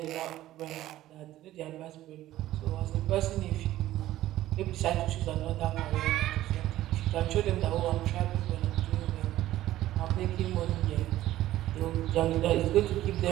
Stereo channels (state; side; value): quieter; left; 14.5 dB